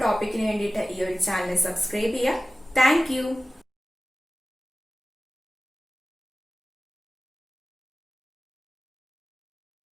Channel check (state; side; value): normal; both; correlation 0.96